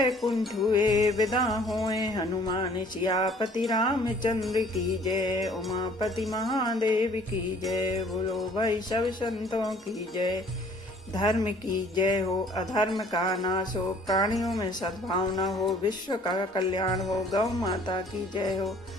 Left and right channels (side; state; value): both; normal; correlation 0.55